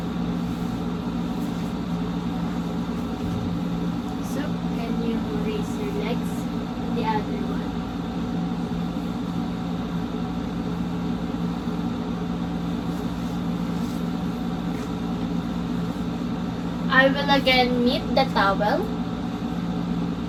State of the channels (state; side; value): identical; both; correlation 1.00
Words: So can you raise your legs? The other one. I will again knit the towel.